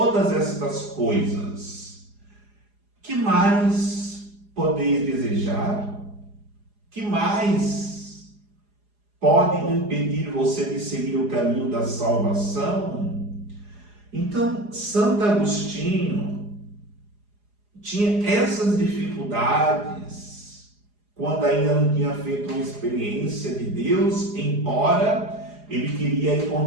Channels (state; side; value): late; left; 4.8 ms